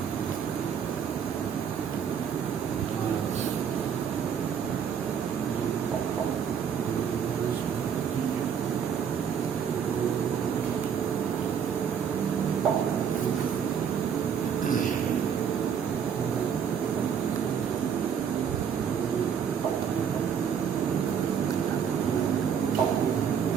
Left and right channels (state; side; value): quieter; left; 7.6 dB